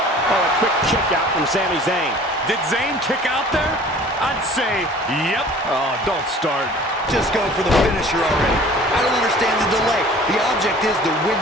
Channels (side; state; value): both; normal; correlation 0.48